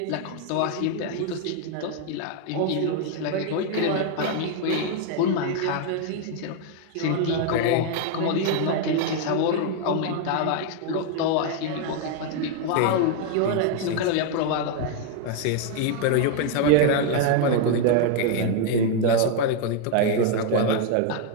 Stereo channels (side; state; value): both; different; correlation 0.00